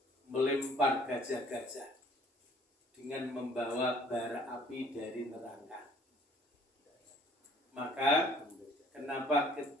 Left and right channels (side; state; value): both; normal; correlation 0.56